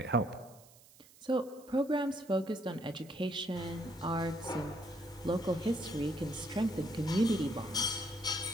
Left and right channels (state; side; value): noise; right; hiss, 24 dB below the sound